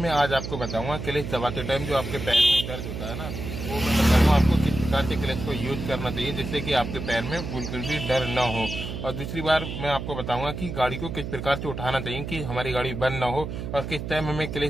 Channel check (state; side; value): noise; right; hum, 6 dB below the sound